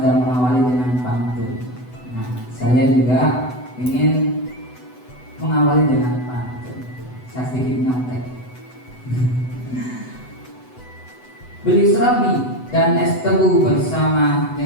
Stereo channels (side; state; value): right; late; 8.0 ms